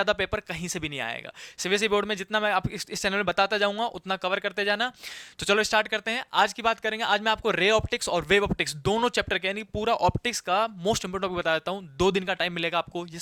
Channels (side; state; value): both; identical; correlation 1.00